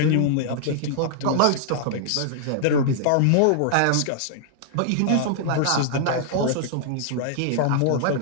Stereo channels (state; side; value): different; both; correlation -0.01